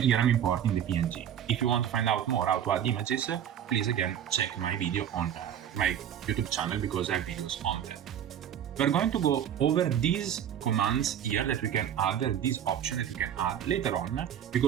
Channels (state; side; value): quieter; left; 9.6 dB